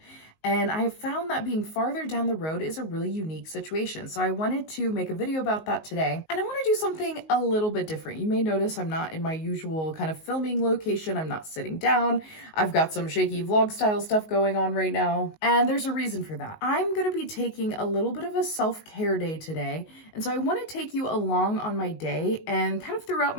And I have found that being farther down the road is a really unique situation. So I wanted to make a video about that today. And I want to do something a little bit different. You may notice I'm not in my usual kind of filming location. I'm not sitting down. I've got some shaky vlog style stuff going on right now. And there's a reason for that. I'm going to be taking a little bit of a self-care day today. And so I want to take you along on my day and kind of throughout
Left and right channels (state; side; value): late; right; 19 ms